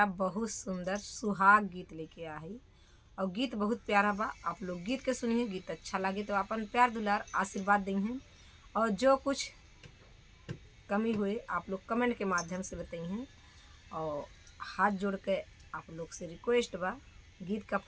बहुत सुंदर सुहाग गीत लेके आई और गीत बहुत प्यारा बा। आप लोग गीत के सुनिए, गीत अच्छा लगे तो अपन प्यार दुलार आशीर्वाद दें और जो कुछ कमी हुए आप लोग कमेंट के माध्यम से बताइए। और हाथ जोड़ के आप लोग से रिक्वेस्ट बा, गीत का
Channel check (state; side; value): identical; both; correlation 1.00